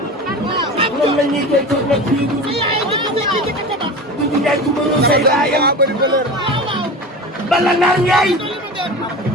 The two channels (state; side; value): normal; both; correlation 0.31